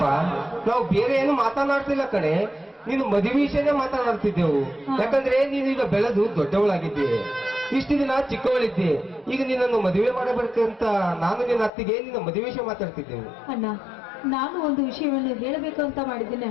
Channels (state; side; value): drops out; right; at 11.7 s